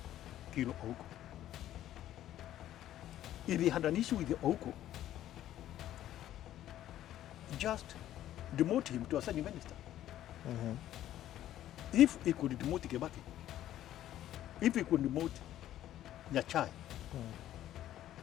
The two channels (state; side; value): quieter; right; 12.6 dB